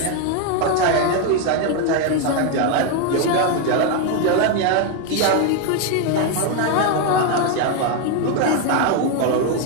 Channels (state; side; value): different; both; correlation 0.01